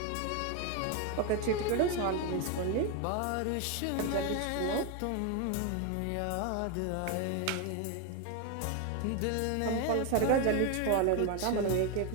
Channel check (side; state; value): both; different; correlation 0.01